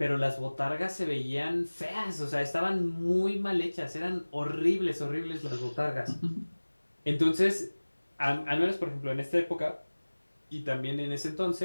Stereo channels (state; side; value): inverted; both; correlation -1.00